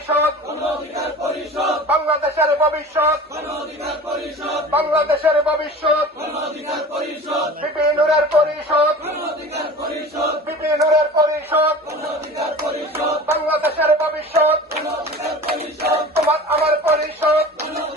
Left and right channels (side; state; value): both; normal; correlation 0.38